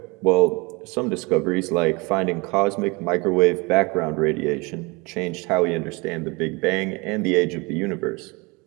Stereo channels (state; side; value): quieter; left; 27.0 dB